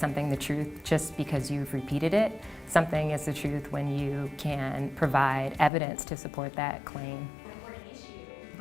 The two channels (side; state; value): right; drops out; at 5.7 s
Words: the truth just because you've repeated it. Something is the truth when you can provide evidence to support that claim.